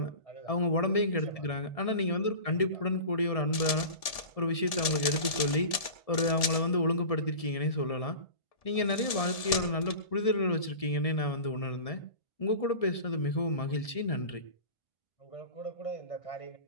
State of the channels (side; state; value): right; late; 1.7 ms